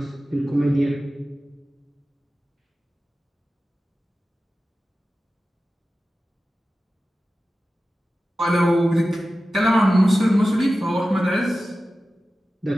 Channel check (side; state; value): both; normal; correlation 0.94